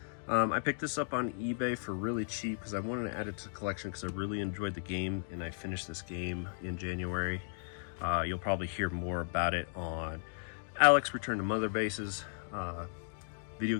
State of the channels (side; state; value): right; silent; digital silence